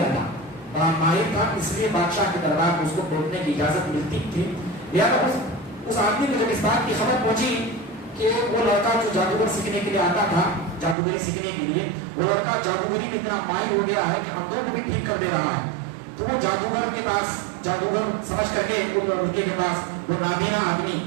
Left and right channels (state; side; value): drops out; left; at 11.0 s